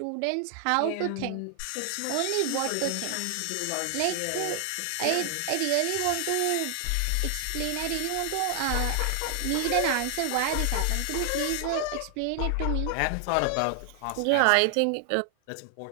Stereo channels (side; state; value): both; different; correlation 0.00